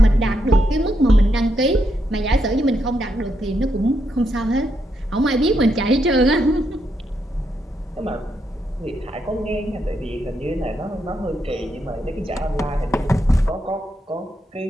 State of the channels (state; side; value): normal; both; correlation 0.80